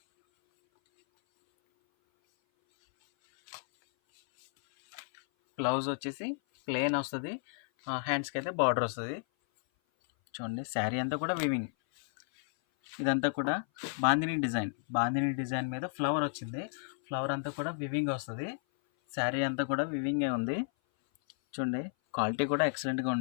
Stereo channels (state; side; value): silent; right; 56 dB below the other